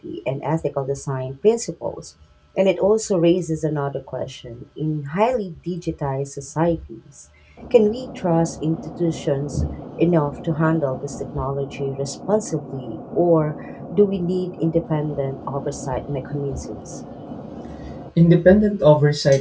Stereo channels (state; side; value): identical; both; correlation 1.00